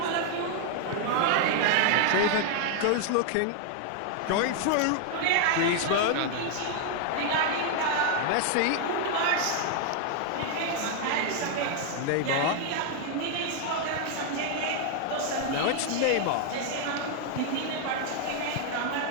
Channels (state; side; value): different; both; correlation 0.00